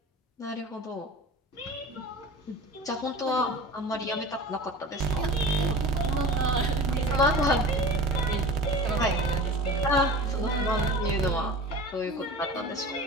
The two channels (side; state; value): both; normal; correlation 0.37